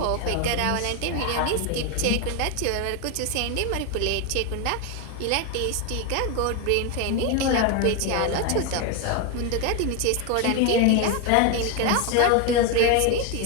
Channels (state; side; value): different; both; correlation 0.01